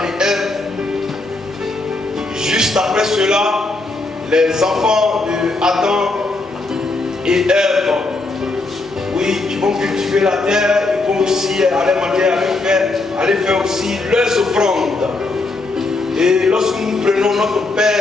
et Ève. Juste après cela, les enfants d'Adam et Ève, oui, ils vont cultiver la terre, ils vont aussi aller faire aussi leurs offrandes. Et lorsque nous prenons notre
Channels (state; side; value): quieter; right; 3.3 dB